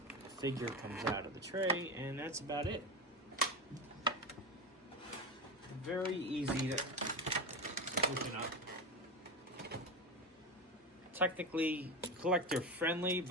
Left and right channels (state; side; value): normal; both; correlation 0.20